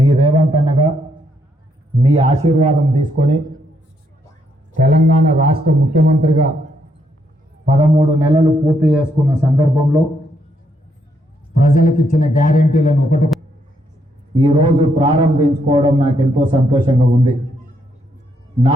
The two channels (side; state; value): both; normal; correlation 0.75